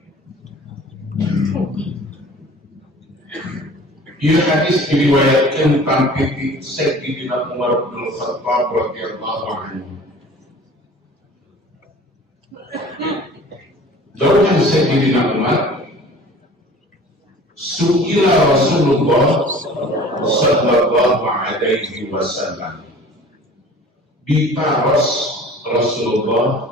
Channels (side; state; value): both; normal; correlation 0.45